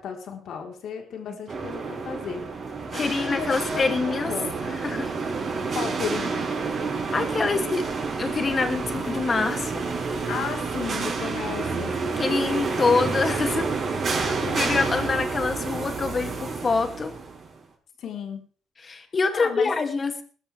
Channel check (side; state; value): both; normal; correlation 0.82